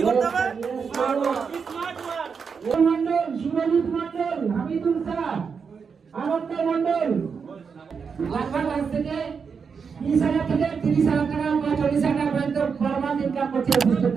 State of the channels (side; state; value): left; quieter; 5.9 dB